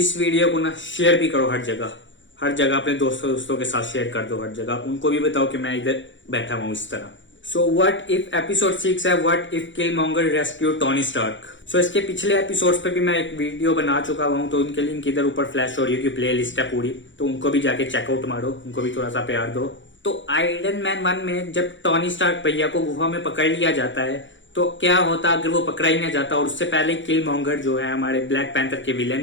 वीडियो को ना शेयर भी करो हर जगह अपने दोस्तों के साथ शेयर कर दो हर जगह। उनको भी बताओ कि मैं इधर बैठा हुआ हूँ इस तरह। सो व्हाट इफ एपिसोड 6 है what if Killmonger rescue Tony Stark. So इसके पिछले एपिसोड्स पे भी मैं एक वीडियो बना चुका हूँ, तो उनके लिंक इधर ऊपर फ्लैश हो रही है कि प्ले लिस्ट है पूरी, तो उनको भी जाके चेकआउट मारो, उनको भी थोड़ा सा प्यार दो। तो आयरन मैन 1 में जब टोनी स्टार्क भैया को गुफा में पकड़ लिया जाता है तो क्या होता अगर वो पकड़ा ही नहीं जाता और उससे पहले किलमॉन्गर जो है हमारे ब्लैक पैंथर के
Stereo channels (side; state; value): right; late; 0.54 ms